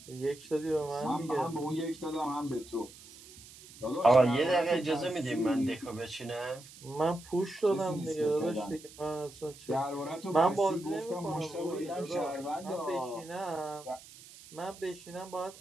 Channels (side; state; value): right; noise; hiss, 19 dB below the sound